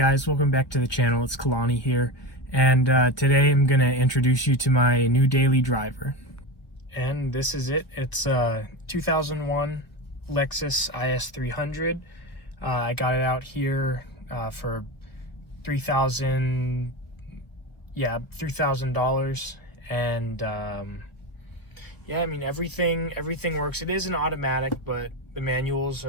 welcome back to the channel. It's Kalani here, and today I'm going to introduce you to my new daily driver. And this is it. It's a 2001 Lexus IS300. I got it out here for $3,000, and yeah, I mean everything works. It is an automatic, but the manuals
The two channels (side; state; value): right; late; 1.3 ms